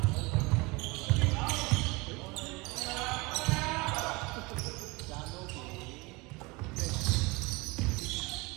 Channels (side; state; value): left; quieter; 25.2 dB